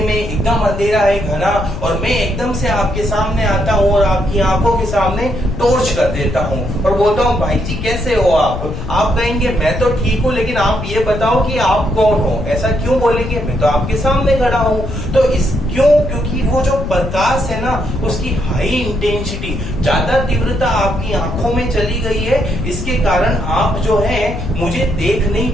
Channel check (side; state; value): left; noise; rumble, 7 dB below the sound